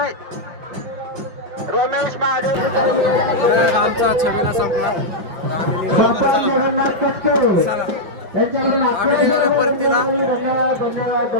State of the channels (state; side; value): late; left; 5.6 ms